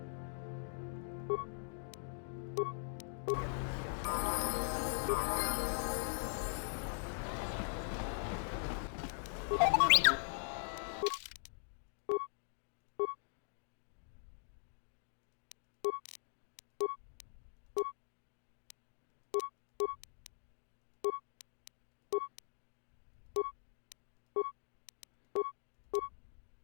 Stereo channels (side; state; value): right; silent; digital silence